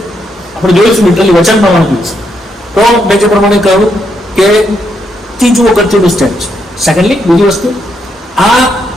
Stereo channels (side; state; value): both; normal; correlation 0.78